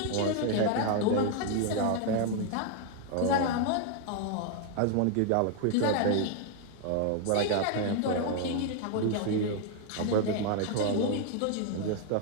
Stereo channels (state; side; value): different; both; correlation 0.00